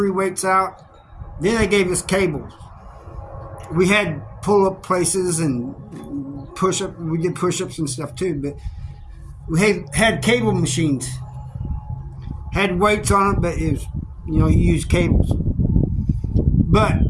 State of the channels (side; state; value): both; identical; correlation 1.00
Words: weights out. Then they gave us cables. We had pull-up places and push-up. We did push-ups and stuff too, but we had cable machines. Had weights on it, but it was, you use cables. But